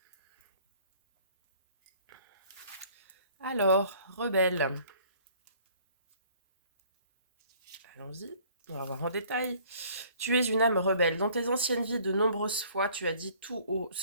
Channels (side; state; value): both; inverted; correlation -0.56